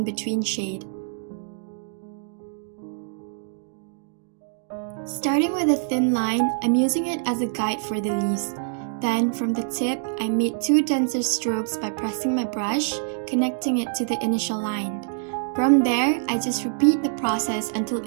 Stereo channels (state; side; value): silent; left; digital silence